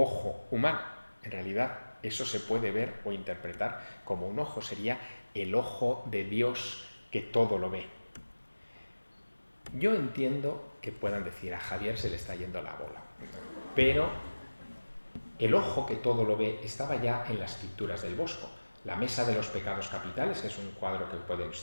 humano. En realidad, eso se puede ver o interpretar como un ojo, sería el ojo de Dios que todo lo ve. Yo entiendo que puedan decir: a Javier se le está yendo la bola, pero el ojo que todo lo ve estaba ya en las pinturas del Bosco. La Mesa de los Pecados Capitales, que es un cuadro que pueden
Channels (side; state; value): both; inverted; correlation -1.00